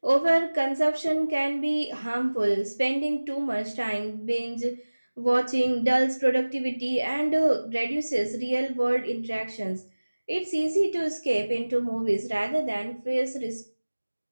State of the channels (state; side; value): inverted; both; correlation -1.00